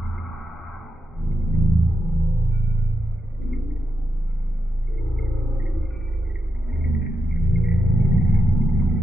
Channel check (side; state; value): both; normal; correlation 0.86